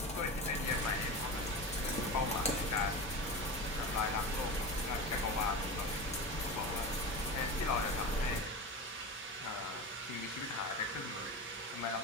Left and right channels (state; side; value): normal; both; correlation 0.26